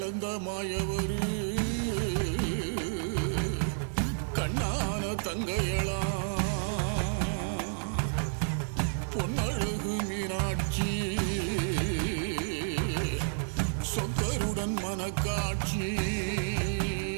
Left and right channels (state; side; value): silent; left; digital silence